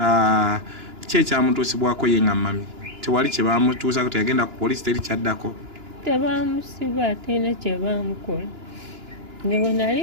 Ki ekyamutuusibwako ye nga mami? Tewali kye baamutuusako, teyagenda ku poliisi, teri kyaddako? Tebaamusiba, terina kye baamukola. Nge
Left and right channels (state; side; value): late; left; 2.9 ms